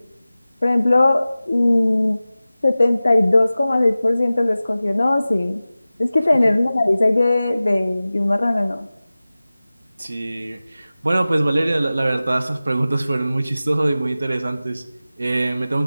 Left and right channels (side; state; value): both; inverted; correlation -0.97